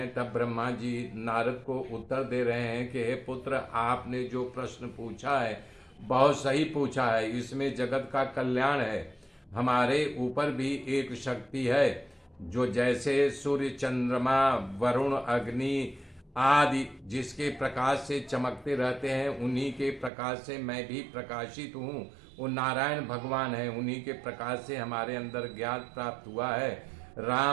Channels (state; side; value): drops out; left; at 20.1 s